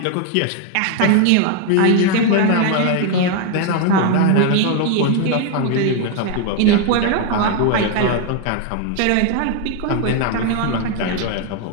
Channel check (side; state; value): both; different; correlation 0.01